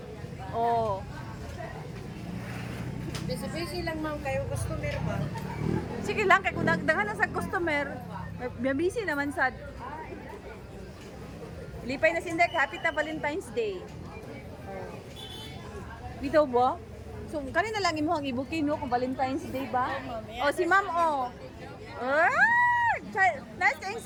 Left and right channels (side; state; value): both; identical; correlation 1.00